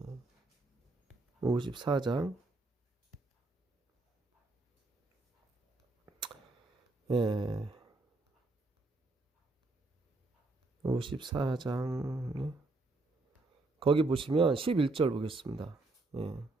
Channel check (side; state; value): left; quieter; 3.1 dB